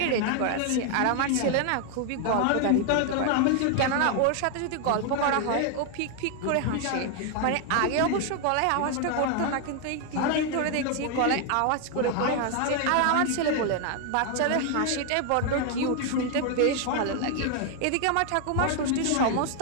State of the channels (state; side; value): different; both; correlation 0.00